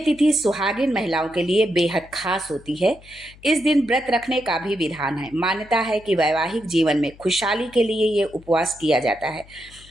सुहागिन महिलाओं के लिए बेहद खास होती है। इस दिन व्रत रखने का भी विधान है। मान्यता है कि वैवाहिक जीवन में खुशहाली के लिए ये उपवास किया जाता है।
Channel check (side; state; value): left; noise; hum, 23 dB below the sound